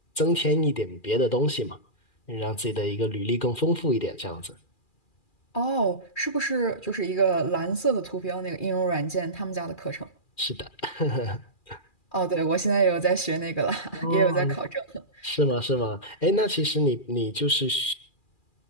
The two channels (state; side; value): late; right; 2.4 ms